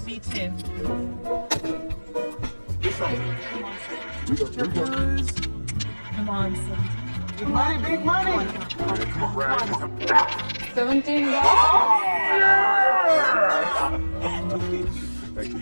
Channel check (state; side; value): inverted; both; correlation -1.00